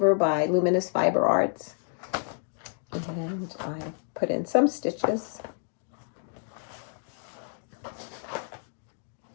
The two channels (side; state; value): right; silent; digital silence